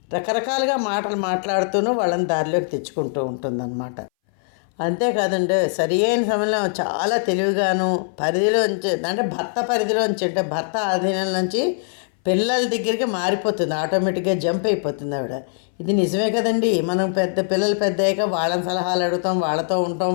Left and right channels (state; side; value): silent; right; 62 dB below the other